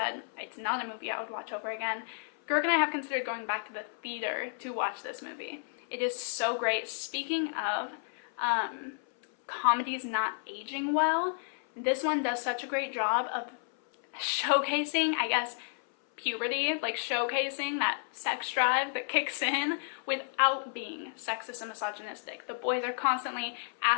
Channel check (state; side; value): silent; right; 57 dB below the other